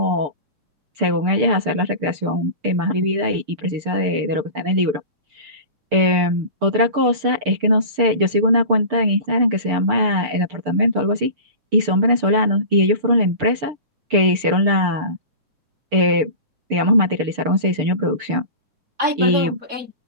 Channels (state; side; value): late; left; 6.7 ms